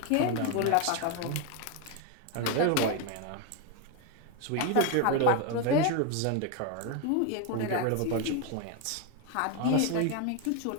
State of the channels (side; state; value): both; different; correlation 0.02